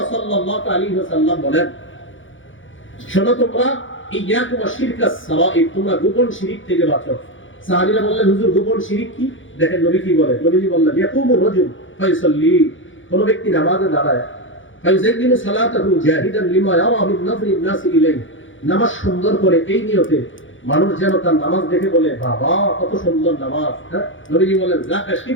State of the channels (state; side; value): late; right; 0.56 ms